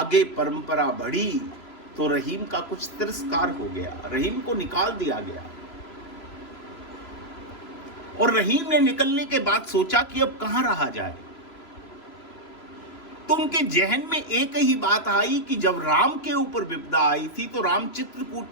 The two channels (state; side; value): late; right; 3.0 ms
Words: परंपरा बढ़ी तो रहीम का कुछ तिरस्कार हो गया, रहीम को निकाल दिया गया। और रहीम ने निकलने के बाद सोचा कि अब कहां रहा जाए। तो उनके जहन में एक ही बात आई कि जब राम के ऊपर विपदा आई थी तो राम